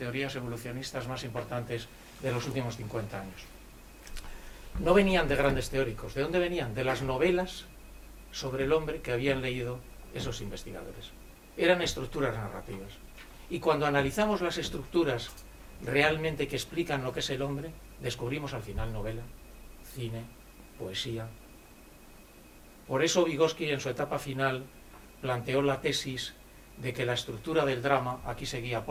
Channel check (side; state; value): both; identical; correlation 1.00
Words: evolucionistas más importantes de los últimos 50 años. No venían de grandes teóricos. ¿De dónde venían? De las novelas sobre el hombre que habían leído esos investigadores. Eran estructuras narrativas. Y cuando analizamos las estructuras realmente que explican lo que es el hombre, descubrimos al final novela, cine, poesía. Por eso Vygotsky, en su etapa final, planteó la tesis de que la estructura del drama, aquí seguía